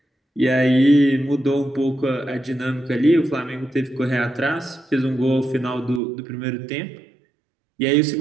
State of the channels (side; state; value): left; drops out; at 6.0 s